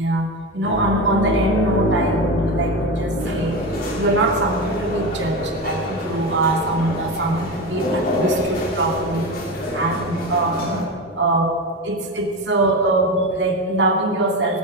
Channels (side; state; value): both; normal; correlation 0.20